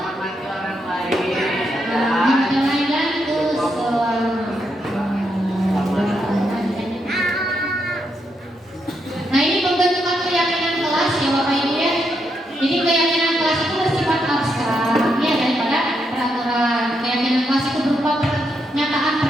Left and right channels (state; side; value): normal; both; correlation 0.80